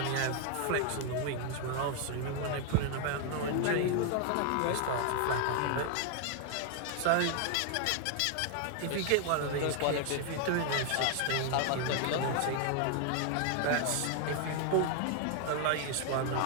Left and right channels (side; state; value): both; different; correlation 0.00